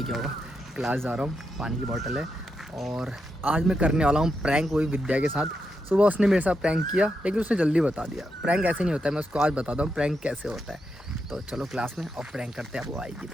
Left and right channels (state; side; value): normal; both; correlation 0.84